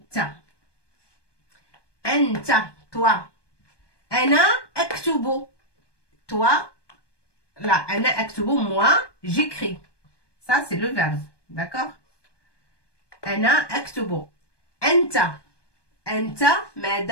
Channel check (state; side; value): late; right; 1.2 ms